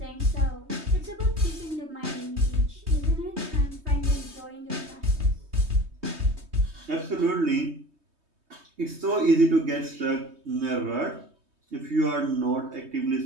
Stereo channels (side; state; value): left; late; 3.2 ms